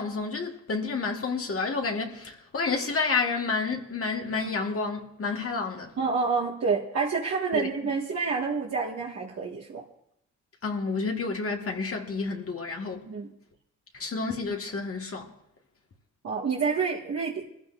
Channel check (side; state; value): both; normal; correlation 0.15